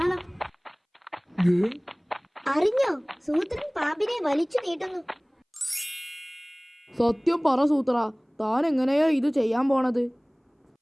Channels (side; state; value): both; identical; correlation 1.00